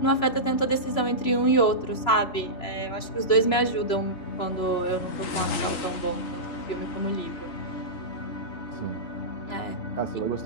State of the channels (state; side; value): late; right; 3.0 ms